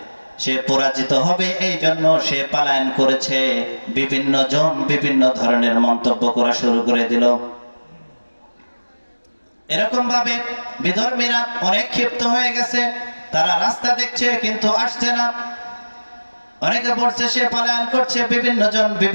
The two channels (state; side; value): inverted; both; correlation -1.00